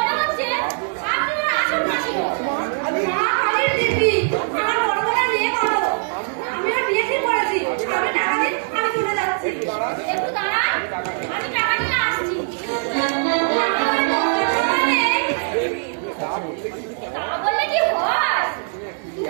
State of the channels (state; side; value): silent; left; 65 dB below the other